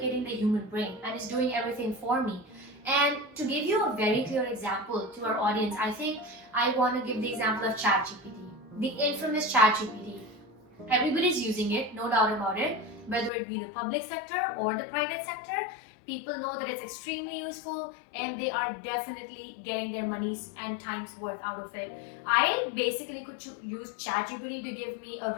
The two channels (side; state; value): right; drops out; at 13.3 s